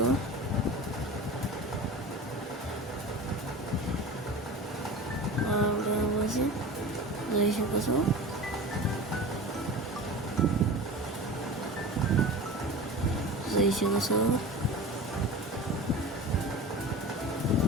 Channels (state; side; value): normal; both; correlation 0.33